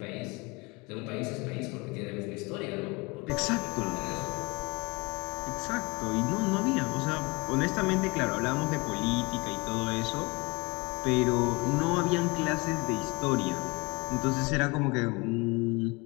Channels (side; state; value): right; quieter; 26.7 dB